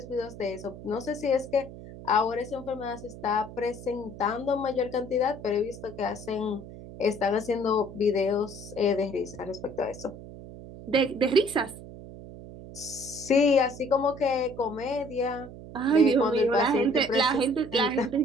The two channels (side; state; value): right; noise; hum, 14 dB below the sound